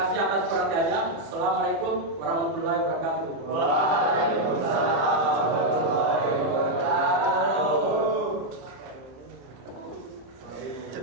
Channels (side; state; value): left; late; 30 ms